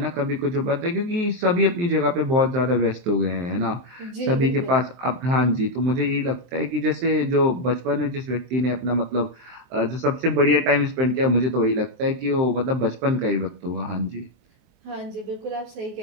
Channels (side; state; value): left; late; 23 ms